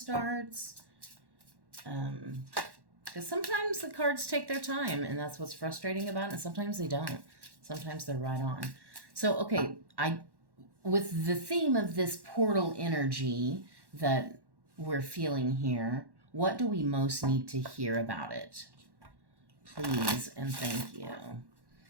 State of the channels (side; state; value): left; late; 1.1 ms